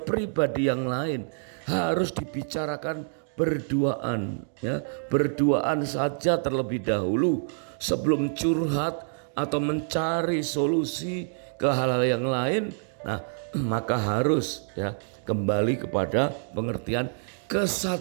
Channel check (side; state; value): left; silent; digital silence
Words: yang lain, harus dibicarakan berduaan, ya, berduaan saja terlebih dahulu sebelum curhat atau mencari solusi ke hal-hal yang lain. Nah, maka harus ya kembali kepada pengertian